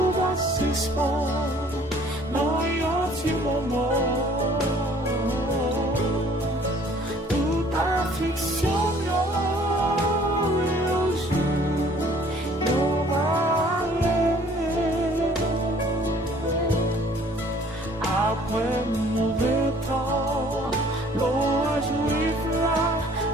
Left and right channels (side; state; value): both; normal; correlation 0.55